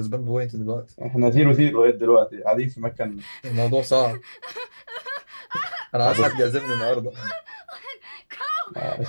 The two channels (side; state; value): both; inverted; correlation -1.00